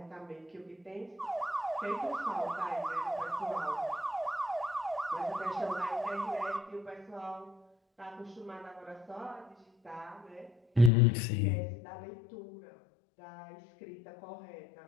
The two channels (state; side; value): drops out; right; at 10.9 s